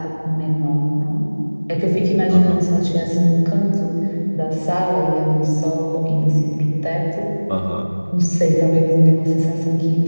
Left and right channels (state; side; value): inverted; both; correlation -1.00